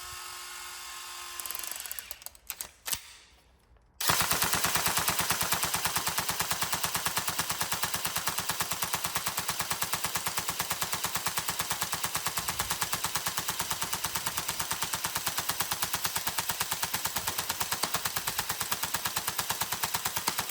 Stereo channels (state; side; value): identical; both; correlation 1.00